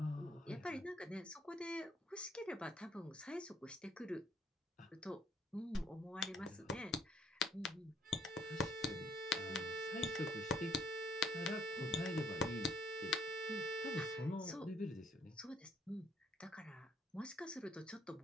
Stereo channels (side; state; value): both; normal; correlation 0.66